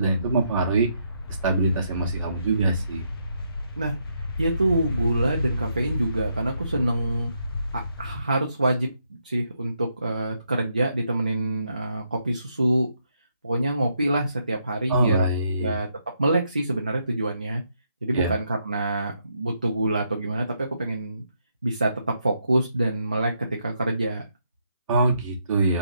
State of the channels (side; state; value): both; inverted; correlation -0.77